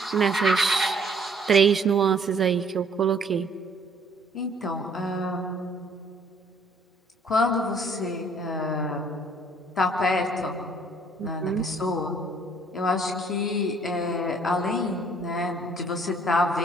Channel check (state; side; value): normal; both; correlation 0.61